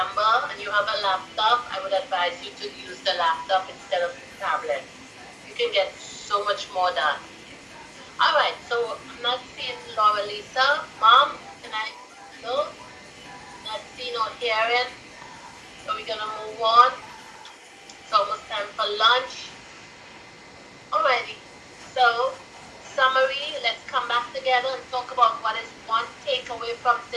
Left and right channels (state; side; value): identical; both; correlation 1.00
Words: and you have a laptop, I would advise you to use the laptop instead of the tablet. You can get so much more done. Alright, so I'm not seeing Laura Lisa. Mom, can I? No? Not seeing or hearing. So we're gonna move on. It's almost time for lunch. Alrighty. So, summary, let's come back together and talk about what is one takeaway from